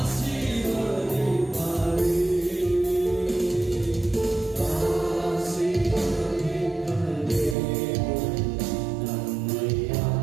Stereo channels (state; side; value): drops out; left; at 7.6 s